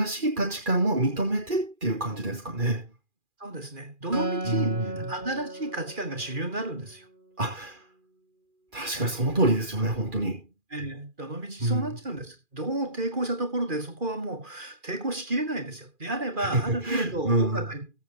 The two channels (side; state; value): left; late; 2.4 ms